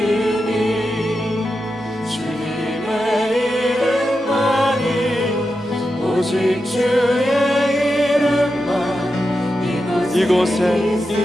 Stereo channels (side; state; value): both; normal; correlation 0.89